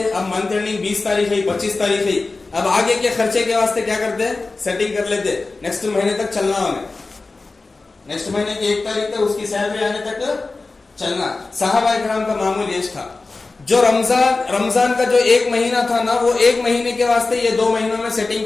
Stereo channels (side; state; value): right; quieter; 3.6 dB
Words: اب منتھ اینڈنگ 20 تاریخ ہے 25 تاریخ ہے, اب آگے کے خرچے کے واسطے کیا کرتے, سیٹنگ کر لیتے, نیکسٹ مہینے تک چلنا ہمیں, نیکسٹ مہینے کی 1 تاریخ تک اس کی سیلری آنے تک چلنا. صحابہ اکرام کا معمول یہ تھا. جو رمضان کا جو 1 مہینہ تھا نا, وہ 1 مہینے کے واسطے یہ 2 مہینوں میں سیٹنگ